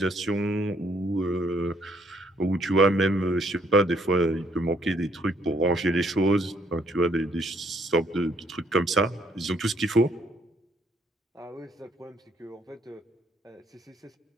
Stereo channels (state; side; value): normal; both; correlation 0.68